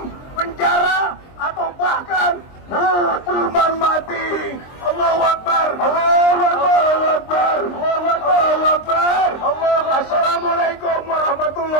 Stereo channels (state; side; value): late; right; 23 ms